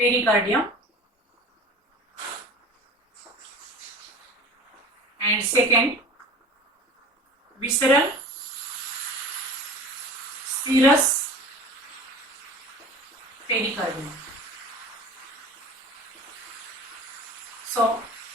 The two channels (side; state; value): both; normal; correlation 0.39